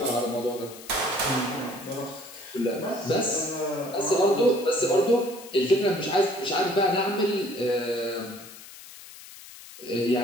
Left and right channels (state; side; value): noise; left; hiss, 17 dB below the sound